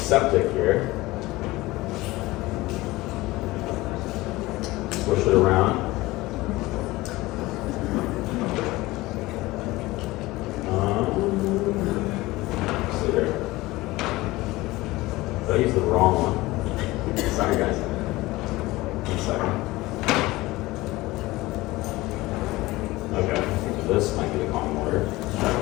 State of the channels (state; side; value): quieter; right; 19.6 dB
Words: here. Swish it around. See there. Did I use the wrong one? Sorry, guys. 1 second. Okay, I think this might be the common water.